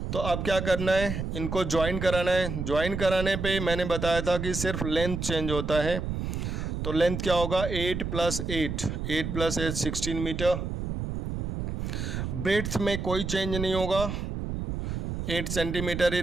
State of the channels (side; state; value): right; noise; rumble, 4 dB below the sound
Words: तो अब क्या करना है, इनको ज्वाइन कराना है। ज्वाइन कराने पे मैंने बताया था कि सिर्फ लेंथ चेंज होता है, तो लेंथ क्या होगा 8 + 8, 8 + 8 16 मीटर। ब्रेड्थ में कोई चेंज नहीं होगा, 8 सेंटीमीटर ही